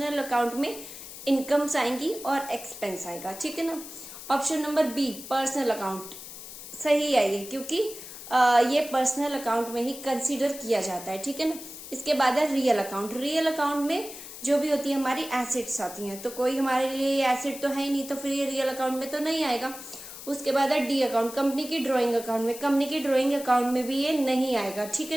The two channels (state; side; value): noise; left; hiss, 13 dB below the sound